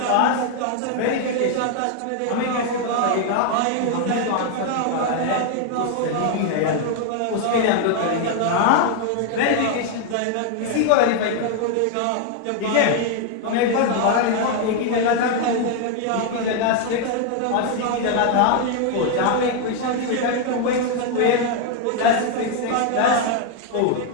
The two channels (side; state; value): both; different; correlation 0.00